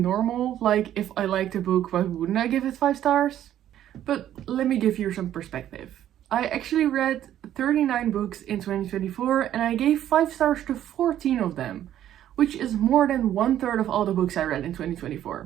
like if I liked a book, why wouldn't I give it 5 stars? But let me give you some perspective. I actually read 39 books in 2024 and I gave 5 stars to 14 of them, which is more than 1/3 of all the books I read in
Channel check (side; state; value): left; quieter; 11.5 dB